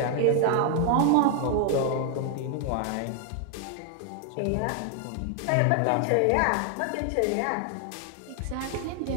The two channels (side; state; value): both; different; correlation 0.00